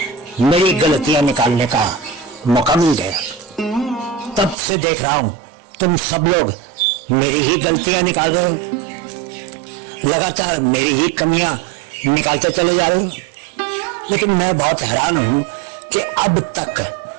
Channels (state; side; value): drops out; left; at 4.5 s